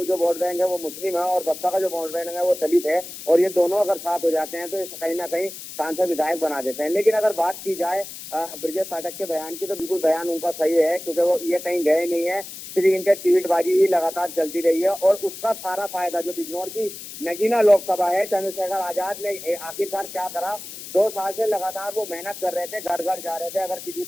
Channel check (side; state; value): left; noise; hiss, 12 dB below the sound